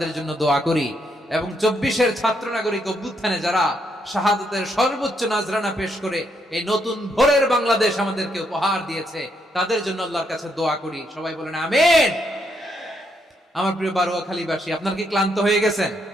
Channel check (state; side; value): normal; both; correlation 0.76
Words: জন্য দোয়া করি এবং 24-এর ছাত্র নাগরিক অভ্যুত্থানে যারা শাহাদাতের সর্বোচ্চ নাজরানা পেশ করে এই নতুন ভোরের বাংলাদেশ আমাদেরকে উপহার দিয়েছে, তাদের জন্য আল্লাহর কাছে দোয়া করি। সবাই বলেন আমিন। আমার প্রিয় বারোয়াখালীবাসী, আপনার কি ক্লান্ত হয়ে গেছেন?